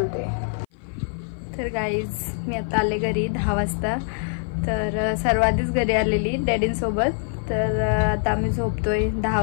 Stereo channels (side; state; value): right; silent; 55 dB below the other